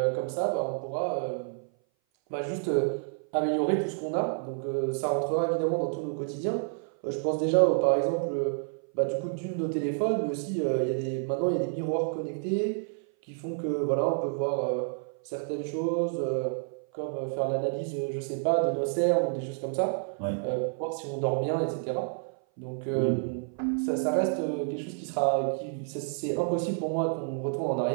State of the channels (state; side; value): silent; left; 57 dB below the other